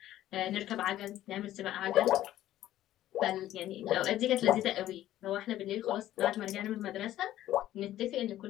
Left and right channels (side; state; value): right; quieter; 13.4 dB